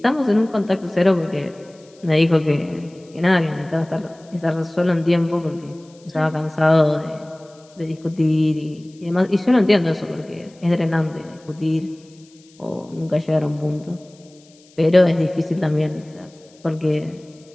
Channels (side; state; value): left; noise; hiss, 29 dB below the sound